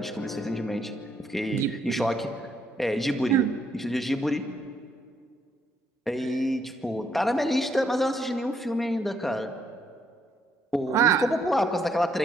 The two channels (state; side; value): normal; both; correlation 0.73